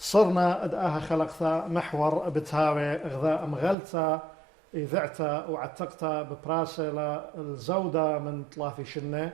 أدآها خلقتا محور بتهاوي غذاء مغلتا إذعتا وعتقتا ببراسة الزودة من 3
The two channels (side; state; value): left; drops out; at 3.8 s